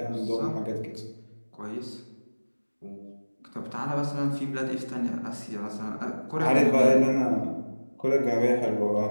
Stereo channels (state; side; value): inverted; both; correlation -1.00